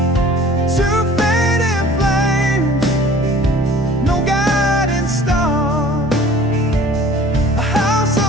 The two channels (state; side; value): normal; both; correlation 0.49